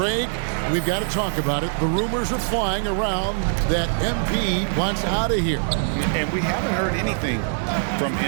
we've got to talk about it. The rumors are flying around that MP wants out of here. And we haven't heard anything from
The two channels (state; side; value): silent; left; digital silence